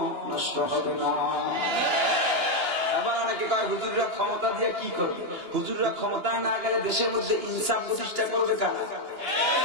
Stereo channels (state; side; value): late; left; 2.9 ms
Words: নষ্ট হবে না। আবার অনেকে কয় হুজুররা ক্ষমতা দিয়ে কি করবে? হুজুররা ক্ষমতায় না গেলে দেশের মধ্যে ইনসাফ প্রতিষ্ঠা করবে কারা?